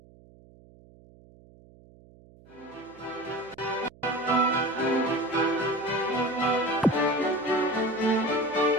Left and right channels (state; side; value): noise; right; hum, 25 dB below the sound